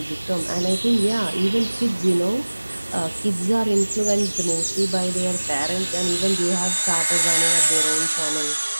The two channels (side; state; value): both; inverted; correlation -1.00